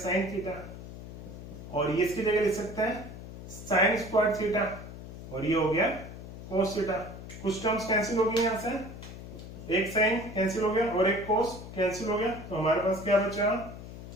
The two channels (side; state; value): left; noise; hum, 12 dB below the sound